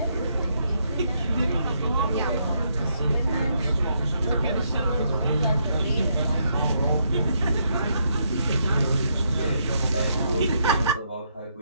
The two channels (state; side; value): inverted; both; correlation -0.76